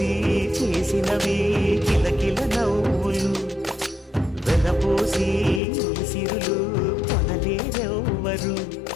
చేసినవి కిలకిల నవ్వులు వెలబోసి సిరులు కొనలేరెవ్వరు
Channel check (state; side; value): drops out; right; at 5.6 s